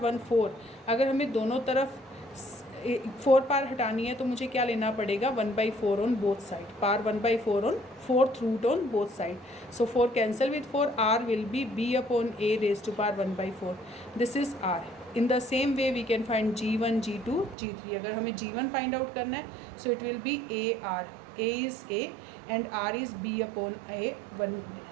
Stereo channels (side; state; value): left; drops out; at 17.6 s